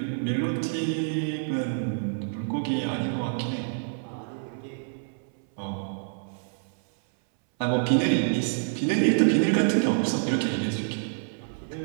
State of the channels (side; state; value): left; silent; 60 dB below the other